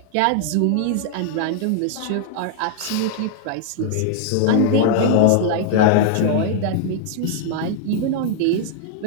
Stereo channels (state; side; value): different; both; correlation 0.00